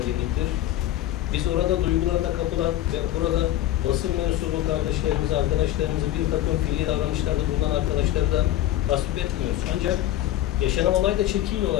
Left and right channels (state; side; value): quieter; right; 13.3 dB